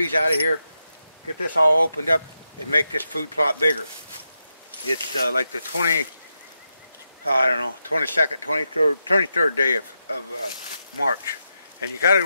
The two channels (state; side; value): inverted; both; correlation -0.87